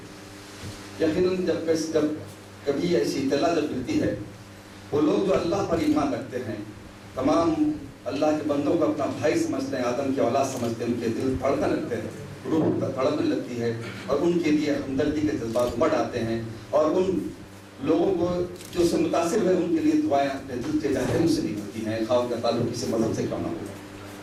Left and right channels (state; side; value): identical; both; correlation 1.00